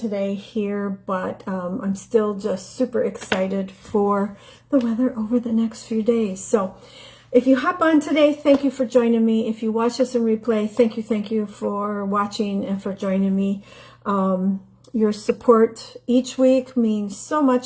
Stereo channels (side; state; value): both; identical; correlation 1.00